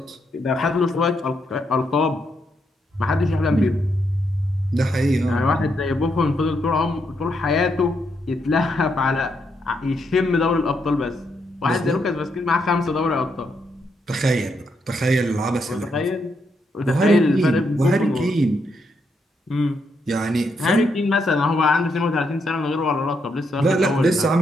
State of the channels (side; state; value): both; normal; correlation 0.79